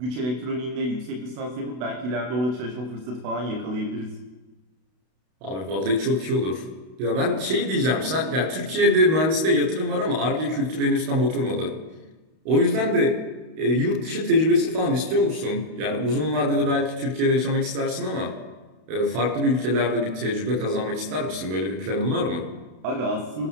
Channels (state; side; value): late; left; 32 ms